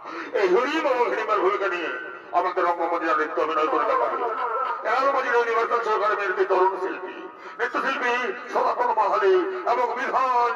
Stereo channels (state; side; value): identical; both; correlation 1.00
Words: এই হরিম এবং হিড়িম্বার ভূমিকা নিয়ে আমাদের রঙ্গমঞ্চে নৃত্য অভিনয় করে দেখাবে এলাকাবাজির ইউনিভার্সাল সরকারের মেয়েদের তরুণ শিল্পী, নৃত্যশিল্পী সনাতন মাহালি এবং বিধান